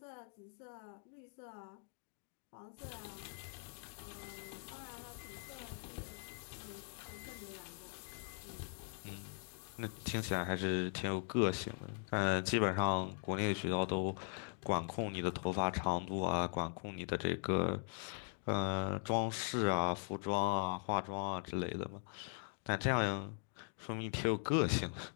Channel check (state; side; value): silent; right; 51 dB below the other